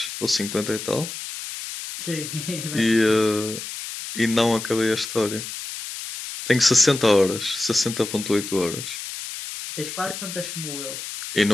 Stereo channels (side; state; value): left; noise; hiss, 8 dB below the sound